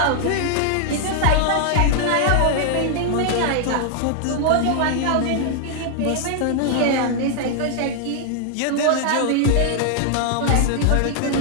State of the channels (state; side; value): different; both; correlation 0.00